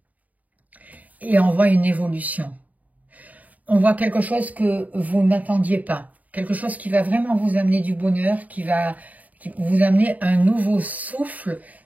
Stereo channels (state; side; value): late; left; 0.074 ms